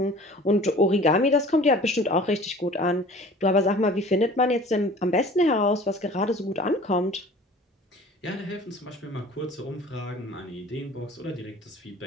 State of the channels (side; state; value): both; normal; correlation 0.45